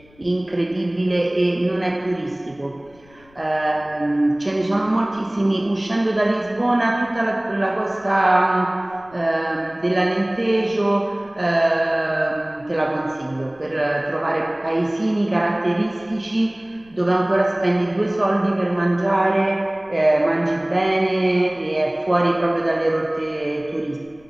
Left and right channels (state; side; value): noise; left; rumble, 29 dB below the sound